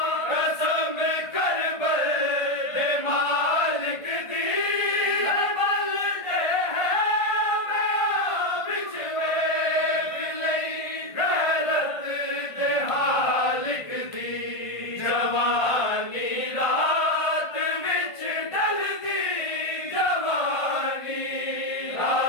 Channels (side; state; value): right; late; 1.5 ms